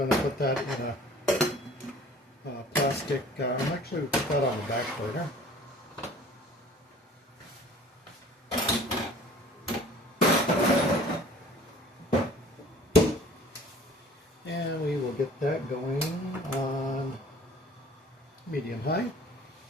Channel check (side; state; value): both; normal; correlation 0.49